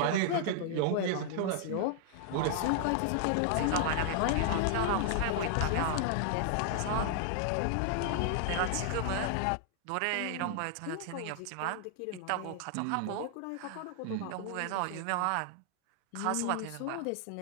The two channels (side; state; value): both; different; correlation -0.01